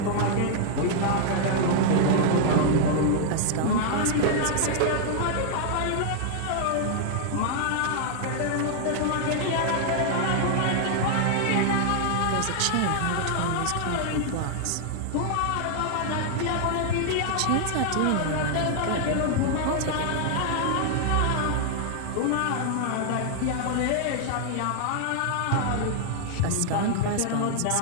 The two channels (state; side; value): different; both; correlation 0.00